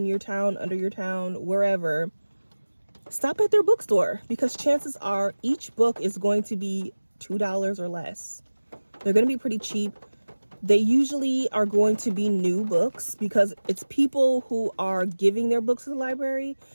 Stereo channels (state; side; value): inverted; both; correlation -1.00